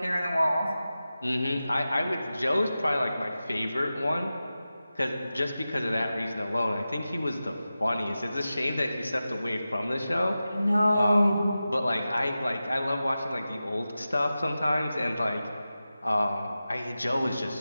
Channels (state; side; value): inverted; both; correlation -0.94